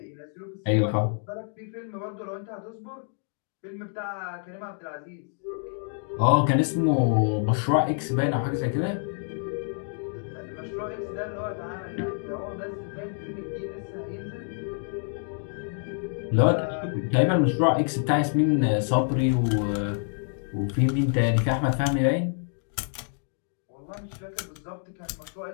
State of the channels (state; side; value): silent; right; 60 dB below the other